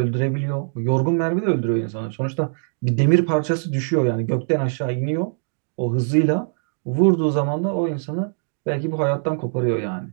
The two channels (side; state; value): left; silent; digital silence